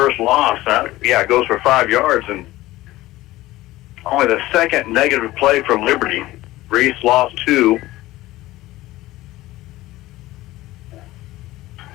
loss. It goes for 5 yards, and only the second negative play for Liberty. Reese lost 2.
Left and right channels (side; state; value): right; quieter; 17.2 dB